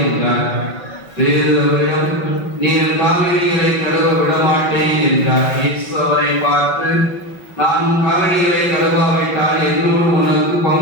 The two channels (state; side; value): late; right; 5.5 ms